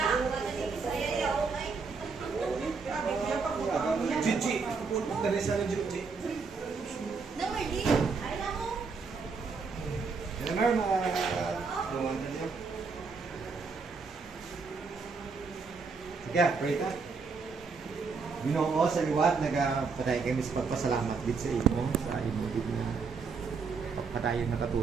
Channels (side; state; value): left; quieter; 4.9 dB